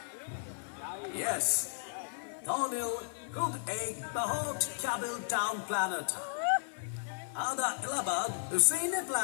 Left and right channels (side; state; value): right; silent; digital silence